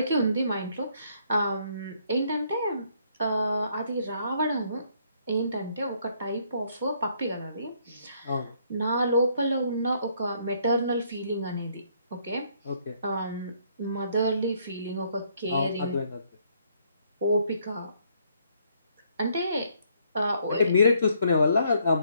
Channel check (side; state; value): both; inverted; correlation -0.68